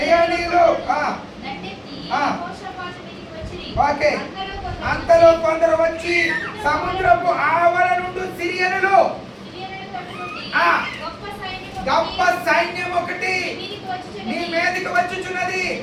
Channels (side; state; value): both; identical; correlation 1.00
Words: ఓకే. అంతలో కొందరు వచ్చి సముద్రపు ఆవల నుండి సిరియనులు గొప్ప సైన్యం ఒకటి నీ మీదకి వచ్చుచున్నది,